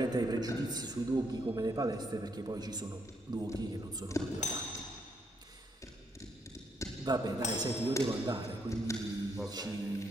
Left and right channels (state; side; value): normal; both; correlation 0.75